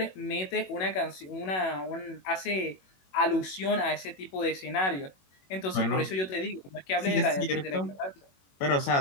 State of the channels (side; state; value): right; late; 21 ms